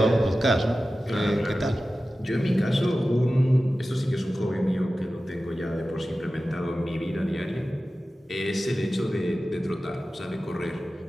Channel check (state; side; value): normal; both; correlation 0.95